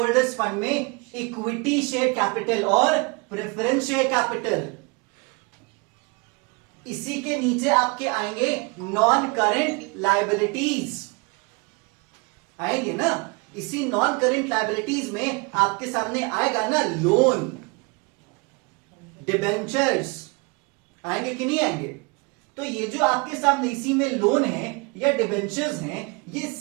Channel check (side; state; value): left; quieter; 29.2 dB